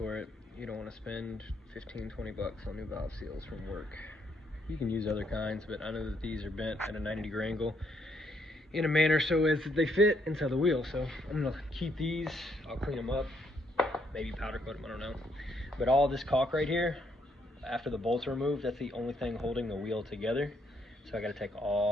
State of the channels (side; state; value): both; normal; correlation 0.72